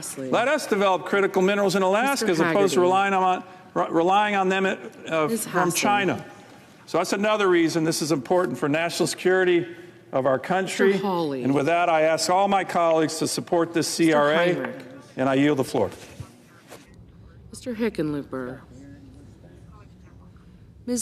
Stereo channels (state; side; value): identical; both; correlation 1.00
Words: Let us develop critical minerals in Alaska as opposed to relying on them from China. So that's another reason this is important for national security of our country. And with that, I ask all my colleagues to support this CRA, and I yield the floor. Mr. Hickenlooper.